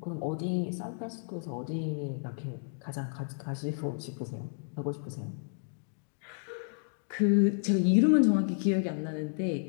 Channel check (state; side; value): silent; right; digital silence